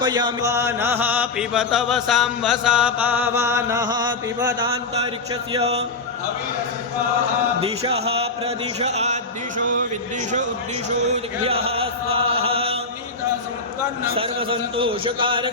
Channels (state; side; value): quieter; right; 3.6 dB